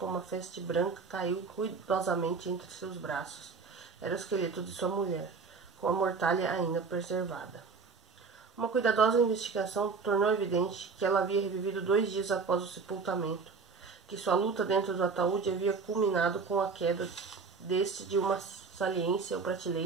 uma feste branca caiu ruidosamente entre seus braços. Era o esqueleto de sua mulher, com a mortalha ainda preservada. Uma cuidadosa investigação tornou evidente que ela havia revivido 2 dias após o sepultamento, que sua luta dentro do ataúde havia culminado com a queda deste de uma saliência ou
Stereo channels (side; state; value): left; quieter; 4.9 dB